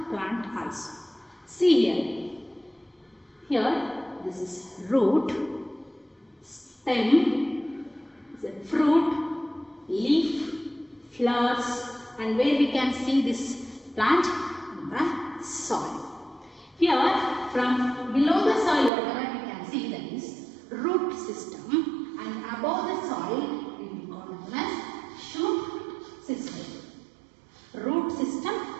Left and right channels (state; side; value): drops out; left; at 18.9 s